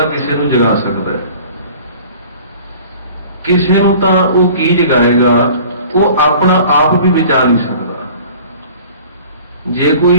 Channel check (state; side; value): inverted; both; correlation -0.46